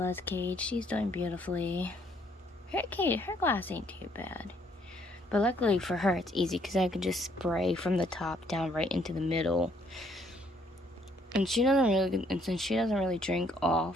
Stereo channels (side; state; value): both; normal; correlation 0.67